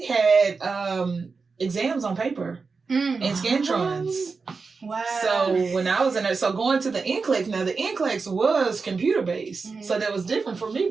had exams on paper and Scantrons. Wow. So when I was in there, so going to the NCLEX, now the NCLEX was computer based. Mm-hmm. So that was different for me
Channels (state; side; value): quieter; left; 4.6 dB